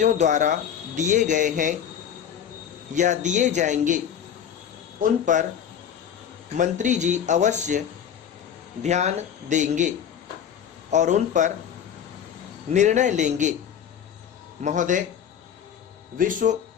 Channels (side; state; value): right; quieter; 8.7 dB